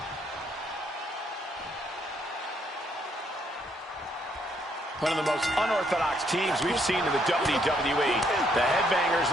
One of the most unorthodox teams we've seen in the WWE. The Headbangers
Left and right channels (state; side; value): normal; both; correlation 0.71